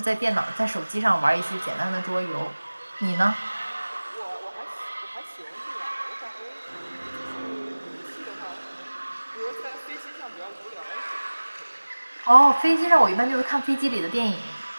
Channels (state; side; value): inverted; both; correlation -1.00